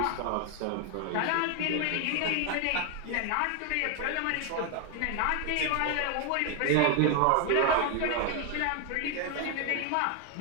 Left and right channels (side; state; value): both; different; correlation 0.01